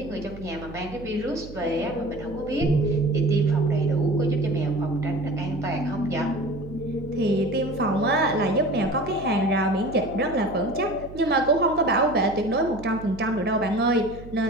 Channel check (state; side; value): noise; right; hum, 15 dB below the sound